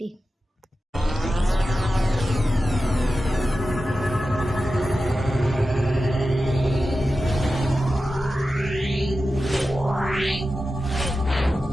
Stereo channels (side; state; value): both; normal; correlation 0.93